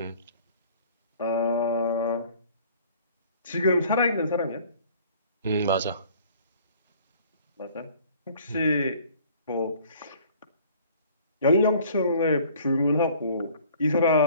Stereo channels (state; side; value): inverted; both; correlation -0.53